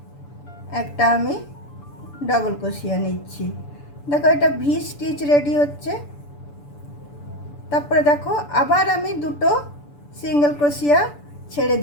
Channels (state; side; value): late; right; 6.9 ms